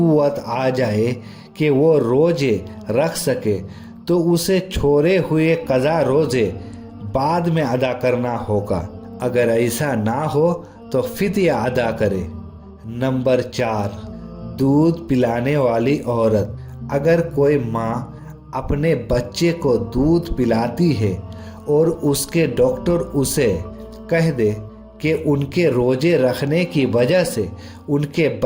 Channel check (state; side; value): identical; both; correlation 1.00